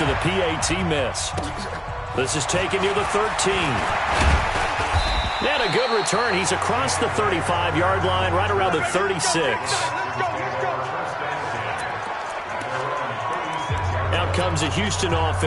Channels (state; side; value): identical; both; correlation 1.00